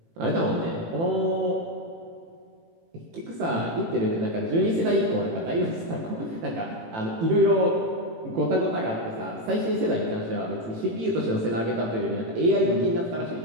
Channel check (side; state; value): left; late; 18 ms